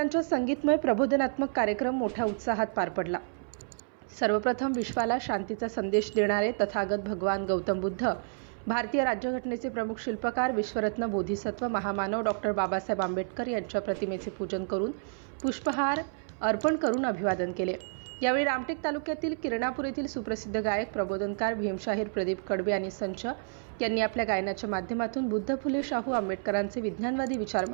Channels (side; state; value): left; silent; 58 dB below the other